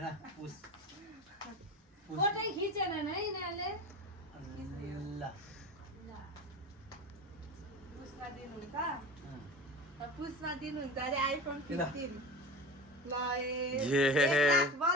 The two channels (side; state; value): both; normal; correlation 0.30